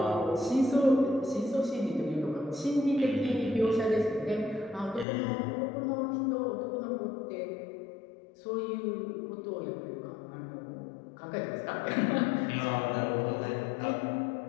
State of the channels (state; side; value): drops out; right; at 5.1 s